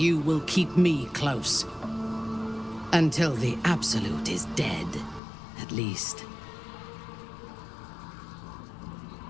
will keep me close. Until the Absolute is dead, at least.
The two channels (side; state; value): right; drops out; at 5.2 s